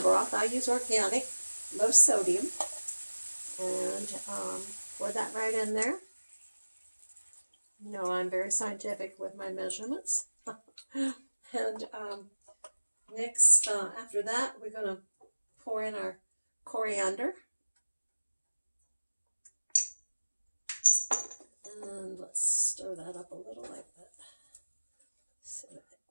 broth. I use organic, low sodium, and pour that right in there. You know, I'm very scientific with my measurements. And next, after that, we're going to pour in our coriander. And let's stir that up a little like that. So that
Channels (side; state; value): both; inverted; correlation -1.00